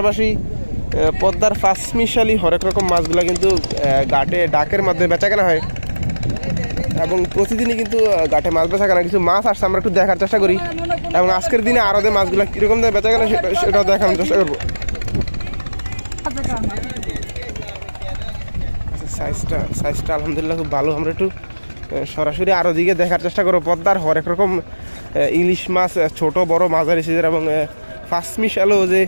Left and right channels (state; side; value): inverted; both; correlation -1.00